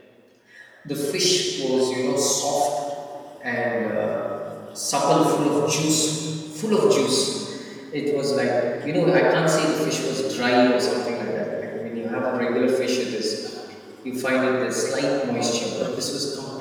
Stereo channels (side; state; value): both; identical; correlation 1.00